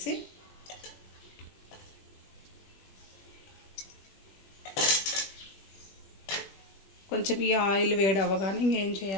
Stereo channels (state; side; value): late; right; 20 ms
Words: కొంచెం ఈ ఆయిల్ వేడి అవ్వగానే ఇంకేం